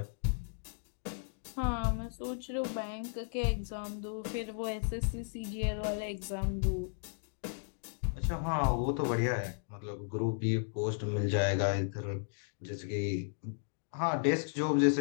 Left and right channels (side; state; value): right; silent; digital silence